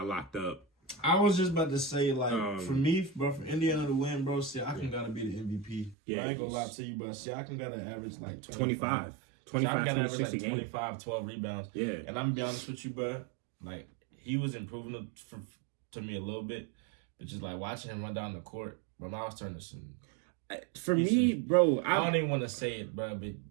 locked up. I was just about to say, for me, bro, for Indiana to win, bro, Siakam got to be the MVP. Yeah, I ain't going to lie to you, but Siakam got to average 25, 26 a game. 25, 12 rebounds. Yeah. And I'm going to be honest with you, bro, he was improving to me a little bit, but just, watching him run down the court, bro, I was turning to some... For me, bro, I don't even want to say it, bro, but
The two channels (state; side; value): drops out; left; at 6.0 s